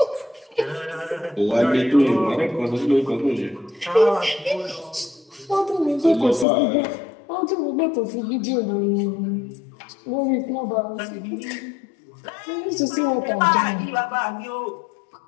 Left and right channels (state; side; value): drops out; right; at 6.5 s